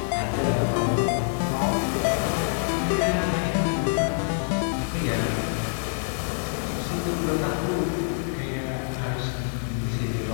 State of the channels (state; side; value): silent; right; 61 dB below the other